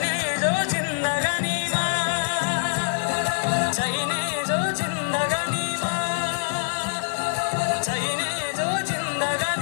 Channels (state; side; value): silent; right; digital silence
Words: जो जिन्दगानीमा चाहिने जो जिन्दगानीमा चाहिने जो